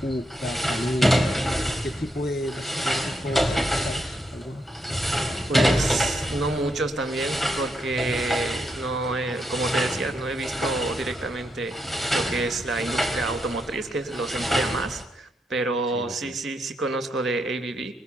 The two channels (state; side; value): normal; both; correlation 0.80